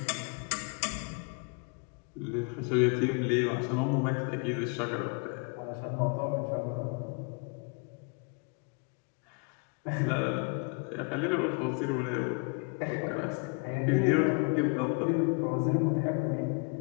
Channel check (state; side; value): quieter; right; 34.7 dB